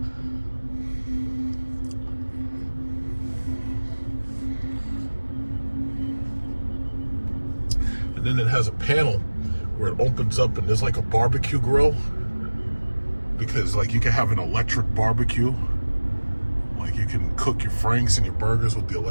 And then it has a panel where it opens up and there's like a barbecue grill, because like you can have an electric barbecue. Like you can cook your franks and your burgers with the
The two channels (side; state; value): both; inverted; correlation -1.00